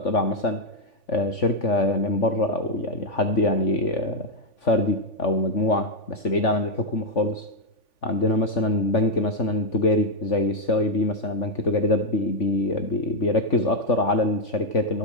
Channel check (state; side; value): late; right; 3.5 ms